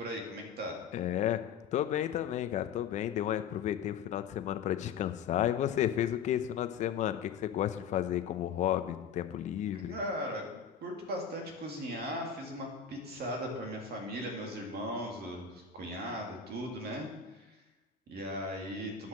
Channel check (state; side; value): quieter; right; 7.1 dB